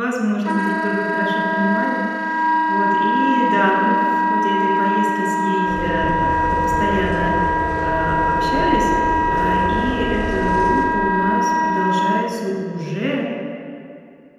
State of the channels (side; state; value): both; identical; correlation 1.00